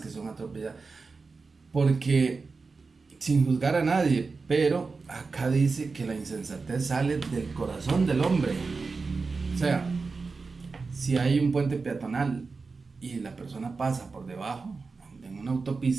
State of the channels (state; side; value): quieter; left; 4.3 dB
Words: que son atropelladas, porque sin juzgar a nadie, pero acá dice que la insensatez sale del corazón del hombre. O sea, si hay un puente peatonal y la persona pasa por debajo, en una